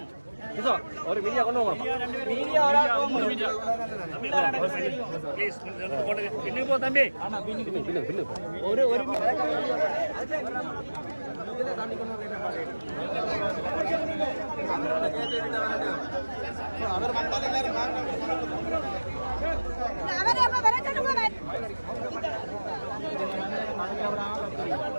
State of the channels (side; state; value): both; inverted; correlation -1.00